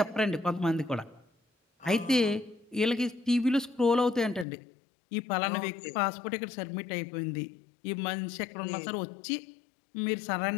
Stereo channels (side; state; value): right; drops out; at 4.5 s